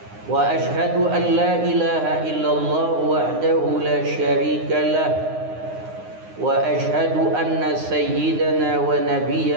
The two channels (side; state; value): left; late; 9.6 ms